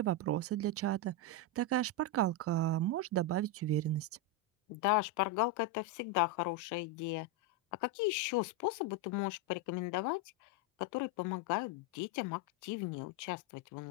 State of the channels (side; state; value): both; normal; correlation 0.05